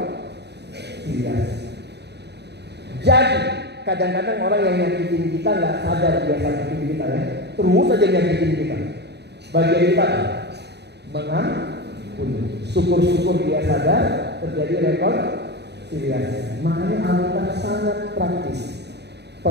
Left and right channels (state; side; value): late; left; 0.49 ms